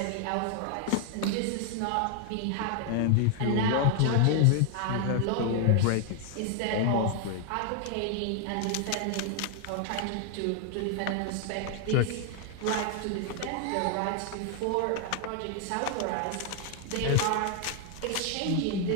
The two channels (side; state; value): both; different; correlation 0.00